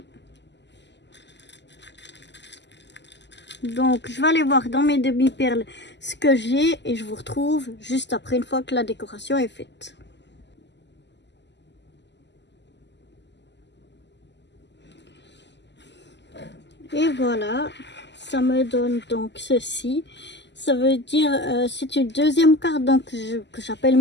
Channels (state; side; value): late; right; 0.51 ms